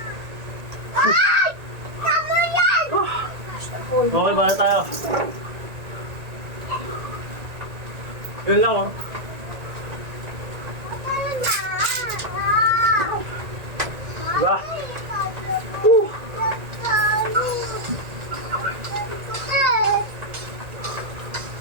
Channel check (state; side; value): late; left; 1.9 ms